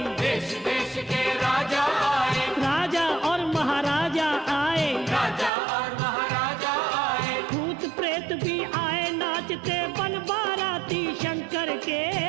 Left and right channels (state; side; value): drops out; left; at 5.5 s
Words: देश देश के राजा आए, राजा और महाराजा आए, राजा और महाराजा आए, भूत प्रेत भी आए नाचते बन बाराती शंकर के